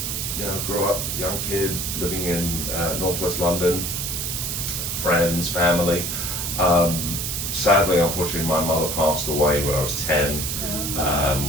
grew up, young kid, living in northwest London, friends, family. Sadly, unfortunately, my mother passed away when I was 10,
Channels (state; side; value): noise; right; hiss, 2 dB below the sound